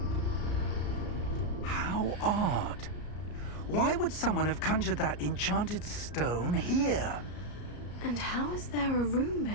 How odd. Why would someone have conjured that enchanted stone here? And how is there a room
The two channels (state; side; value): late; right; 34 ms